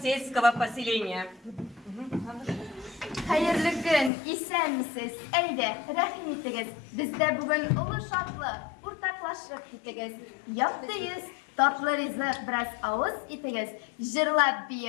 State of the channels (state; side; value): drops out; right; at 4.1 s